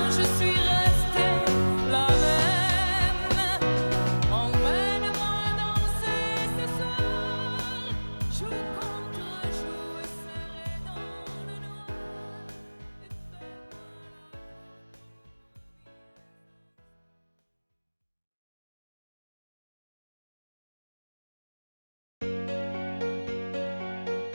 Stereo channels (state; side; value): inverted; both; correlation -1.00